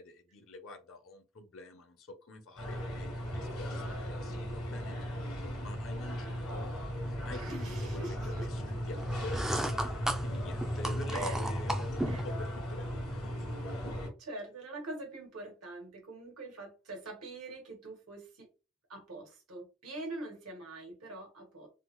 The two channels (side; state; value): both; normal; correlation 0.77